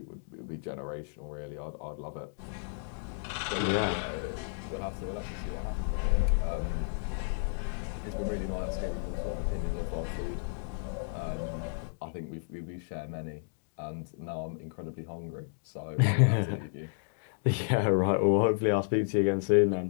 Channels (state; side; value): silent; right; digital silence